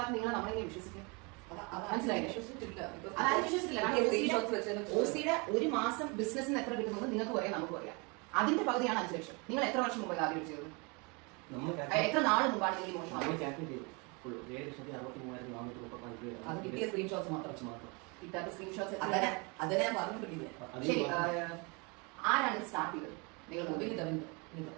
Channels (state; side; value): quieter; left; 30.2 dB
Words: നിങ്ങൾ നമ്മളെങ്ങനെ വിശ്വസിക്കും? മനസ്സിലായില്ലേ? OCയുടെ ഒരു മാസം ബിസിനസ്സിന് എത്ര കിട്ടുന്നത് നിങ്ങൾക്ക് പറയാം, നമുക്ക് പറയാം. അതിന്റെ പകുതിയാണ് 5 ലക്ഷം. നിങ്ങൾ എത്ര വർഷം മുമ്പ് ആദ്യം ചെയ്തത്? എത്ര നാൾ മുമ്പാണ് നിങ്ങൾ മോശം? അത് കിട്ടിയ സ്ക്രീൻഷോട്ട്സ് മാത്രം, കിട്ടാത്ത സ്ക്രീൻഷോട്ട്സ് അതിനെ ഞാൻ പറഞ്ഞിട്ടില്ല. ശരി, ആരാണ് സ്റ്റാർട്ട് ചെയ്തത്? നിങ്ങൾ